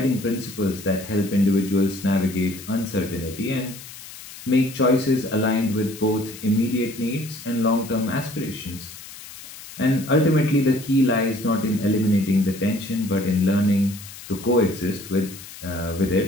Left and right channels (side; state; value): left; noise; hiss, 15 dB below the sound